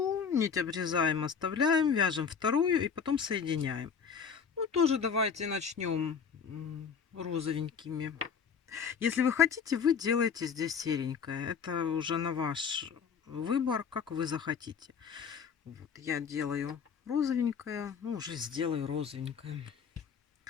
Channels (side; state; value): right; quieter; 6.6 dB